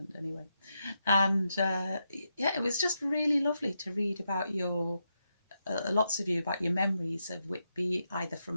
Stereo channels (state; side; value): inverted; both; correlation -0.85